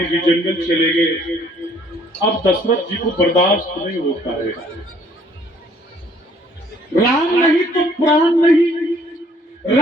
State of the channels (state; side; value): normal; both; correlation 0.60